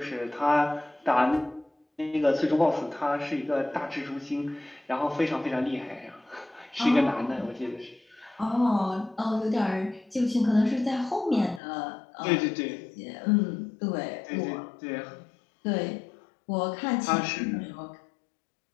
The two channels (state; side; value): drops out; right; at 11.6 s